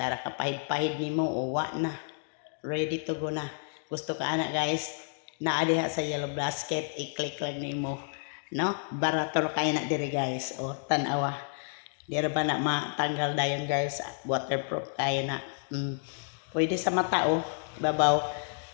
ka pahid-pahid ni mo. O, wa na. Ready to go na. Gusto ka anak guys. Naadiha sa yellow basket. I-click lang ni mo. No? Barator kayo na diri guys. O, tanawa. Dira ba na matanggal dayon guys. Waterproof kayo na. Pwede sa mata, oh. Babaw.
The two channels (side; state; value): right; silent; 58 dB below the other